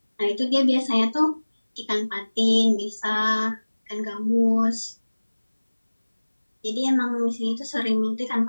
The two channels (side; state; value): both; inverted; correlation -1.00